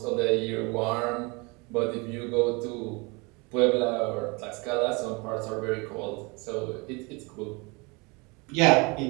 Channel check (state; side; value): quieter; left; 27.9 dB